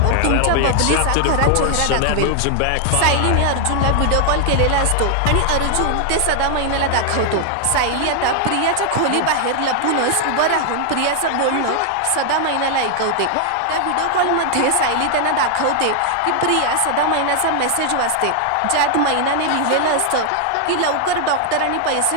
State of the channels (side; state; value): both; different; correlation 0.00